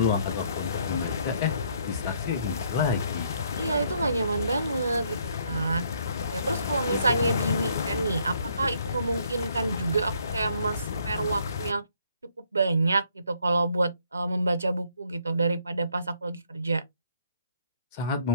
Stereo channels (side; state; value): both; inverted; correlation -0.68